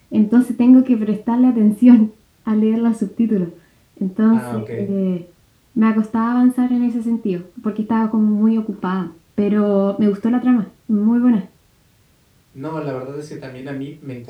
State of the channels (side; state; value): both; identical; correlation 1.00